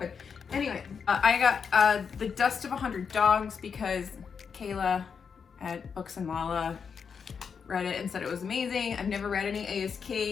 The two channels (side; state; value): right; quieter; 6.3 dB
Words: Anyway, I got The Dust of 100 Dogs because Kayla at Books and Mala read it and said it was amazing. I've never read any A.S.